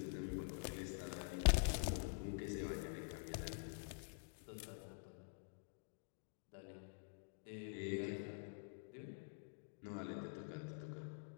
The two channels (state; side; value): silent; right; digital silence